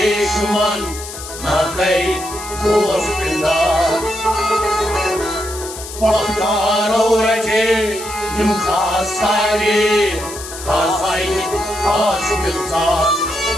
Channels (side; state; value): left; noise; hiss, 11 dB below the sound